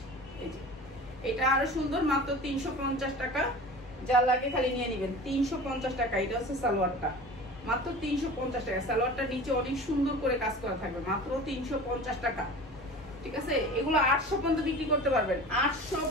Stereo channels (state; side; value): normal; both; correlation 0.37